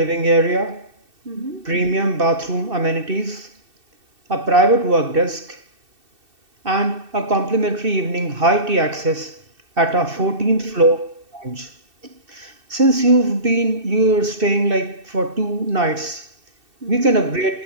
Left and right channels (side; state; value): left; late; 2.7 ms